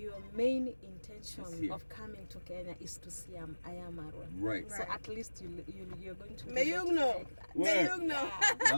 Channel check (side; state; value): both; inverted; correlation -1.00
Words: main Is intention here. of coming to Kenya is to see Ayamaro. Right. So at least you're going to May you relate know. like that. May Where? you know.